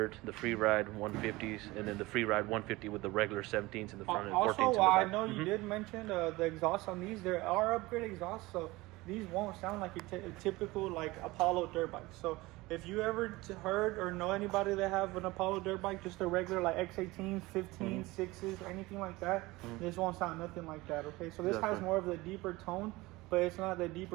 the Freeride 150s, and then the Freeride 150 with the regular 17s in the front and 14s in the back. Also, I know you did mention the exhaust on these. There are upgrade exhausts, so these won't sound like a typical like Apollo dirt bike. So if you ever heard or know anybody that have an Apollo dirt bike, just a regular like X18, 15, 6s, anything like that, this won't sound nothing like that, okay? So this has more of the deeper tone, but it's not the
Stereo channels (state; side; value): quieter; left; 20.8 dB